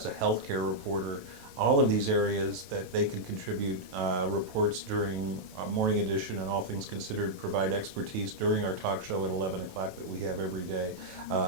a healthcare reporter. All of these areas that they can contribute reports during Morning Edition and All Things Considered, provide expertise during our talk show at 11 o'clock that we have every day.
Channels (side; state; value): left; late; 28 ms